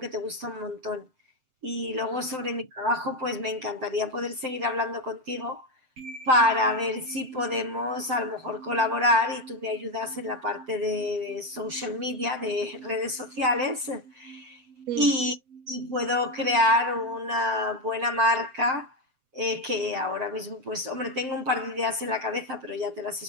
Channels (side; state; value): left; late; 7.7 ms